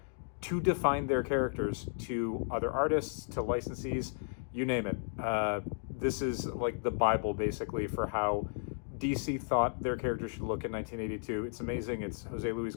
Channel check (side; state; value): right; silent; digital silence